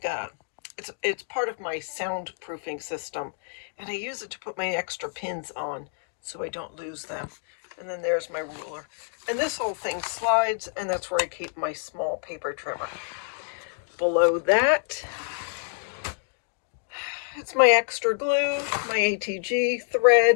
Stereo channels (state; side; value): silent; right; 60 dB below the other